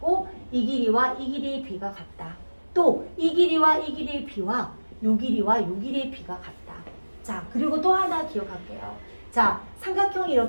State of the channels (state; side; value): inverted; both; correlation -1.00